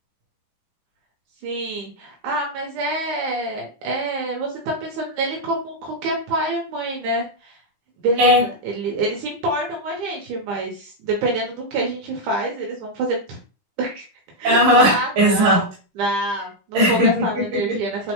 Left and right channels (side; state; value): left; late; 9.9 ms